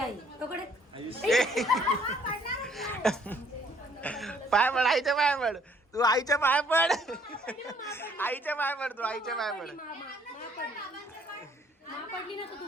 तोकडे पाय पड, आईच्या पाय पड. तू आईच्या पाय पड. आईच्या पाय पड. तू आईच्या पाय पड. मा पडली ना तर तू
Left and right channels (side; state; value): both; normal; correlation 0.62